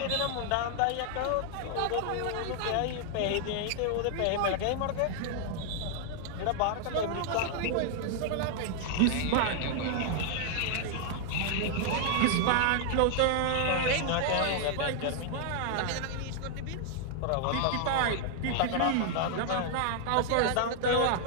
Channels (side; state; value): both; different; correlation 0.00